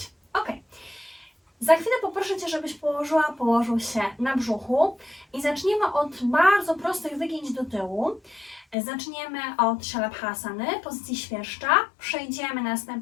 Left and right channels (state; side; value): drops out; right; at 8.8 s